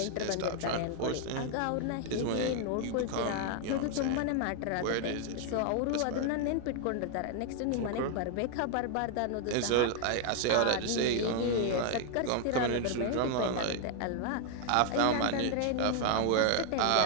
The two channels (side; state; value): both; different; correlation 0.00